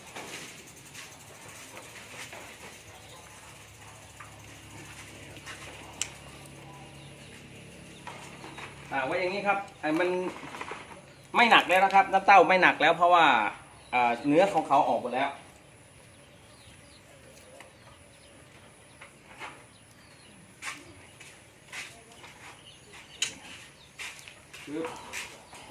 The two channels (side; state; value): both; identical; correlation 1.00